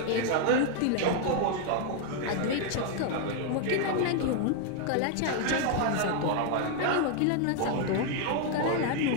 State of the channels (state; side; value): different; both; correlation 0.00